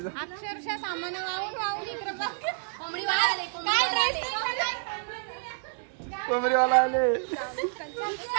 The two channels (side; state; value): left; silent; digital silence